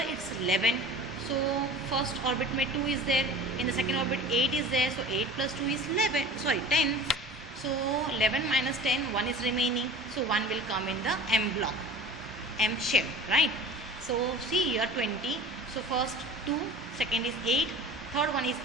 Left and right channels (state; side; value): normal; both; correlation 0.39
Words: it's 11. So first orbit में 2 is there, in the second orbit 8 is there, so 8 plus 2 is 10. So 11 minus 10, 1 is remaining, so 1 will come in the M block, M shell, right? So see here 20, so first 2, second is 8, third one is